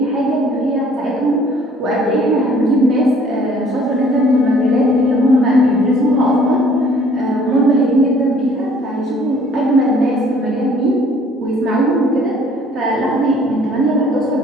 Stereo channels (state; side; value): normal; both; correlation 0.57